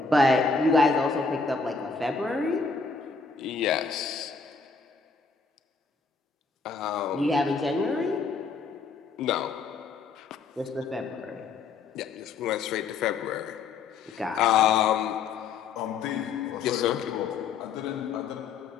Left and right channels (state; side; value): quieter; right; 4.8 dB